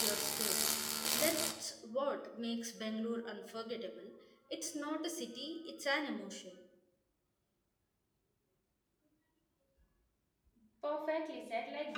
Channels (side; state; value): both; identical; correlation 1.00